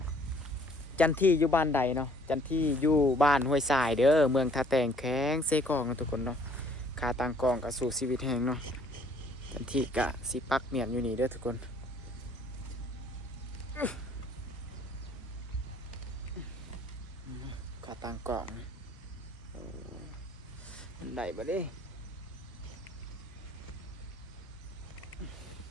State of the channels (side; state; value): both; normal; correlation 0.59